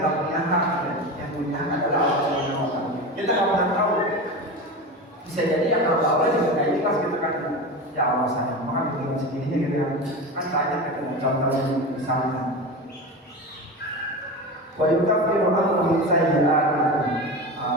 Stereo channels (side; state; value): both; normal; correlation 0.26